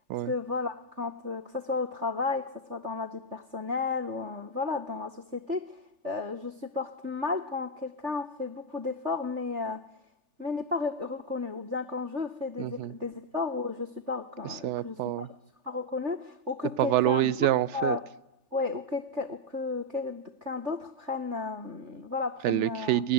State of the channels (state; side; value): late; left; 3.4 ms